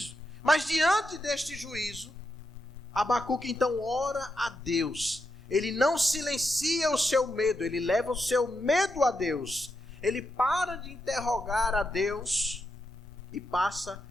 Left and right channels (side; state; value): both; normal; correlation 0.85